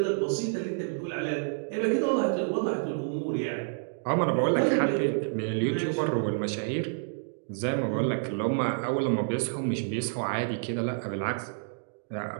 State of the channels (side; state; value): left; silent; digital silence